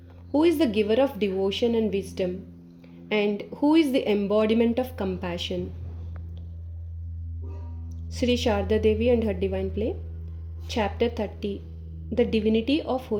who is the giver of devotion and wisdom, and who is the embodiment of compassion. Sri Sharda Devi and her divine play, Chapter 30, The Divinity of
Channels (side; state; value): both; identical; correlation 1.00